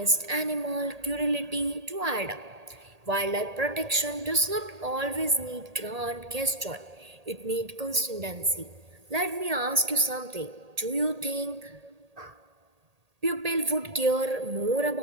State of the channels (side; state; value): left; late; 1.8 ms